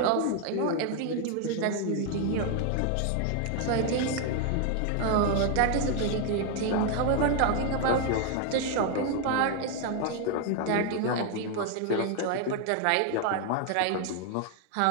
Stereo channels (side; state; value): both; different; correlation 0.01